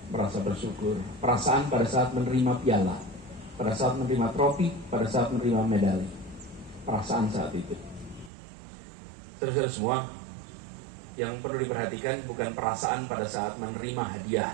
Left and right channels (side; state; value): left; drops out; at 8.3 s